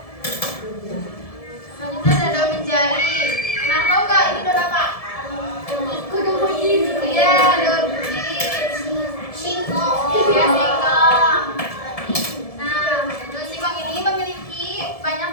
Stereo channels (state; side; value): late; right; 1.7 ms